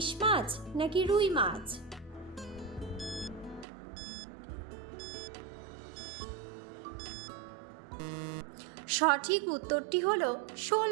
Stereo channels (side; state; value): left; drops out; at 3.7 s